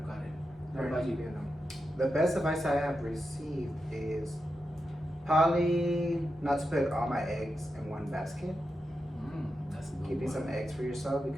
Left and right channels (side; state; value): both; normal; correlation 0.88